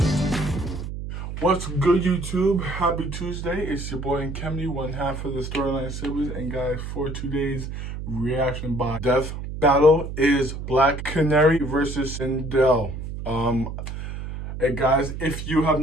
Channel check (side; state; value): right; noise; hum, 7 dB below the sound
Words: What's good, YouTube? Happy Tuesday. It's your boy Kemny, one half of the Storyline Siblings. And guys, for today's reaction by Death Battle is Black Canary versus Sindel. Hey guys, if you have